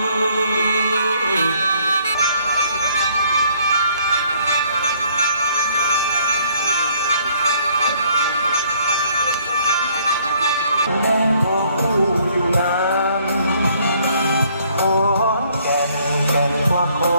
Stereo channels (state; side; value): inverted; both; correlation -0.63